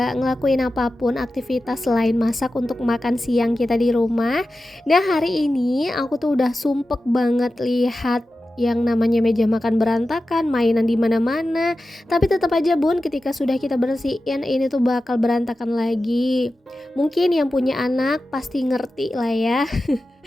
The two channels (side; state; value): both; normal; correlation 0.93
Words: ngelakuin apapun aktivitas selain masak untuk makan siang kita di rumah. Nah hari ini aku tuh udah sumpek banget lihat yang namanya meja makan berantakan, mainan di mana-mana. Tapi tetap aja bun, ketika sudah kita bersihin ini tuh bakal berantakan lagi. Mungkin yang punya anak pasti ngerti lah ya.